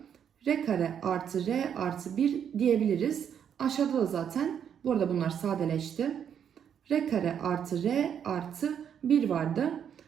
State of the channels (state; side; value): quieter; left; 8.4 dB